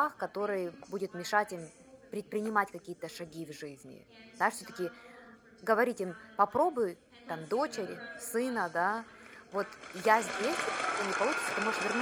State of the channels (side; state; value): both; identical; correlation 1.00